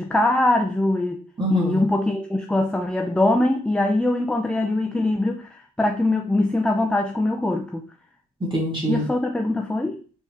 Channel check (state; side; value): normal; both; correlation 0.85